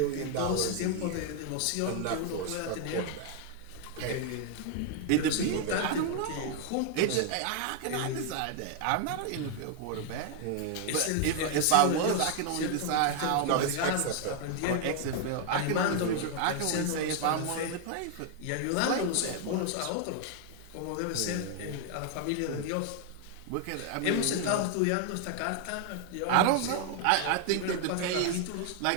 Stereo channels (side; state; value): both; different; correlation 0.00